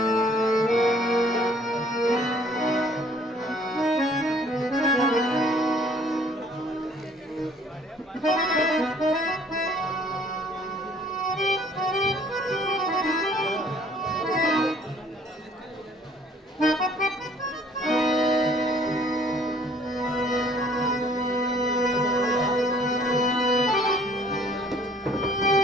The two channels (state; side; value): normal; both; correlation 0.57